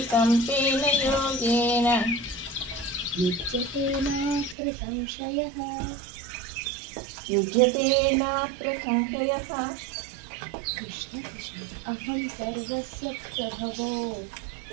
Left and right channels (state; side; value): drops out; left; at 4.5 s